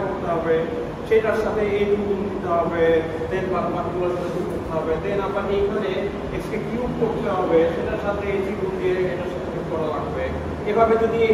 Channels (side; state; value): both; identical; correlation 1.00